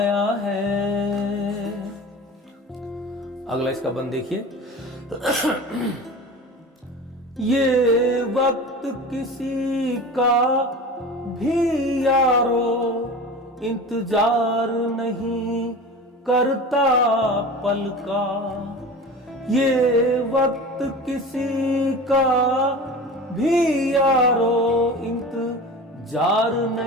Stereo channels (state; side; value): normal; both; correlation 0.34